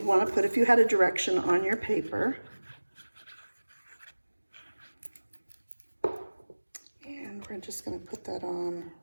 want to put if you had a direction on your paper. we're just going to put that on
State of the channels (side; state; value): both; inverted; correlation -1.00